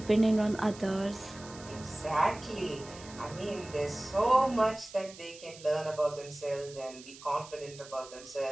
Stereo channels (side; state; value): right; noise; hiss, 17 dB below the sound